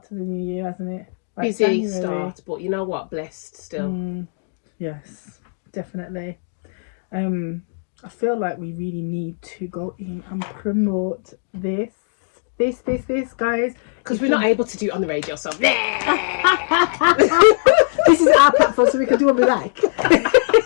to the new year, hasn't it? Like busy January. start, but you know what? Blessed still. Yes, definitely. I feel like we really need to go in and promote this, guys. Because we're not able to do it on the radio, so this is our platform, so we can do what we like.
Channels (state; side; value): silent; right; digital silence